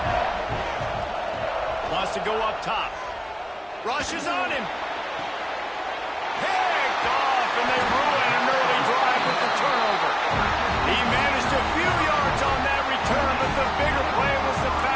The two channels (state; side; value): identical; both; correlation 1.00